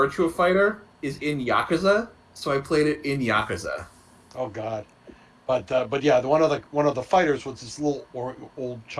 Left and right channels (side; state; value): both; identical; correlation 1.00